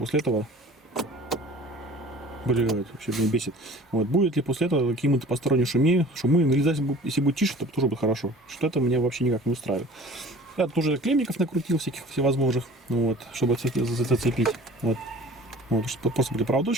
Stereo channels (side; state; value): both; normal; correlation 0.45